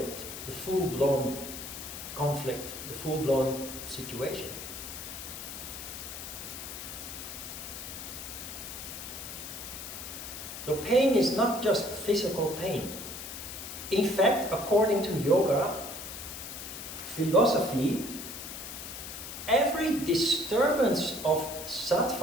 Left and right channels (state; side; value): noise; left; hiss, 9 dB below the sound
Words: the full-blown conflict, the full-blown situation. So pain is not just physical pain. In fact, according to yoga philosophy, every disturbance of